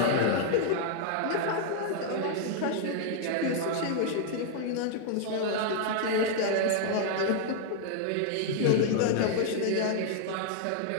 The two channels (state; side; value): different; both; correlation 0.00